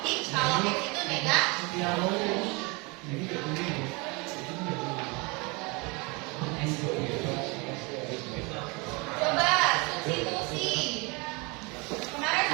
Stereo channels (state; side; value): quieter; left; 28.2 dB